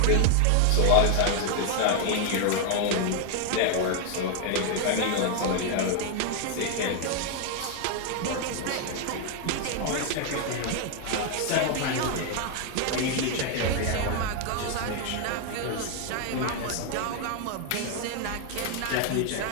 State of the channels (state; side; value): different; both; correlation 0.00